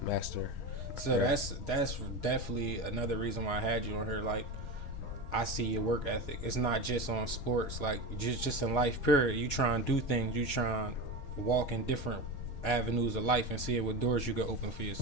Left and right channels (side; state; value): right; late; 6.3 ms